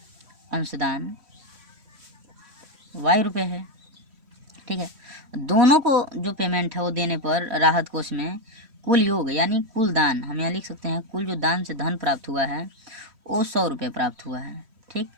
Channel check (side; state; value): left; late; 3.1 ms